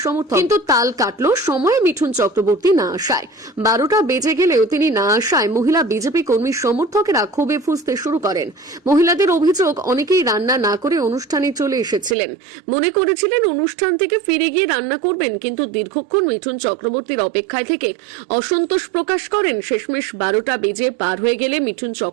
সমর্থক। কিন্তু তাল কাটল সময়ে মিঠুন চক্রবর্তী না আসায়। 12টা বেজে গেলেও তিনি না আসায় মহিলা বিজেপি কর্মীর সমর্থকেরা ক্ষোভে ফুঁসতে শুরু করেন। মহিলাদের অভিযোগ, অনেকেই রান্না না করে অনুষ্ঠানে চলে এসেছিলেন, মনে করেছিলেন অনুষ্ঠান থেকে ফিরে গিয়ে রান্না করবেন, কিন্তু দীর্ঘক্ষণ মিঠুন চক্রবর্তীর অপেক্ষায় থেকে অসন্তোষ প্রকাশ করেন। শেষমেশ 12টা বেজে পার হয়ে গেলে মিঠুন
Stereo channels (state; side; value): drops out; left; at 12.2 s